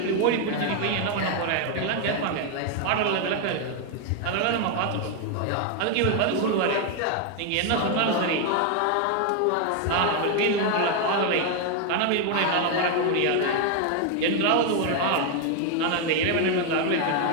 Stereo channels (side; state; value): both; different; correlation 0.01